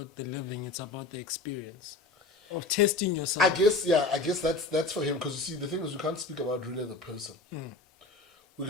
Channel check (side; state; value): right; quieter; 3.5 dB